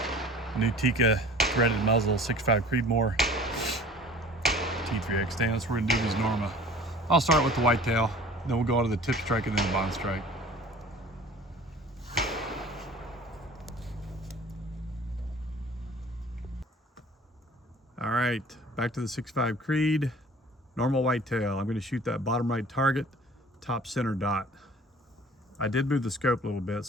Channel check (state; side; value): normal; both; correlation 0.46